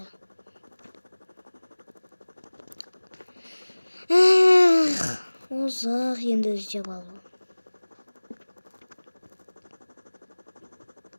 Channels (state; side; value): inverted; both; correlation -1.00